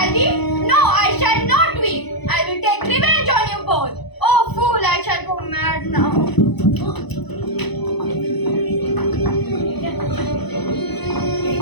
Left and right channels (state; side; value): late; right; 0.99 ms